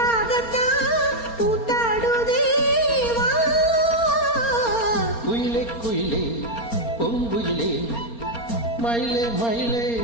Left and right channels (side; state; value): right; late; 4.3 ms